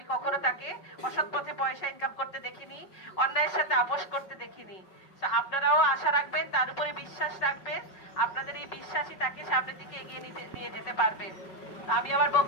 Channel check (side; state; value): right; late; 5.4 ms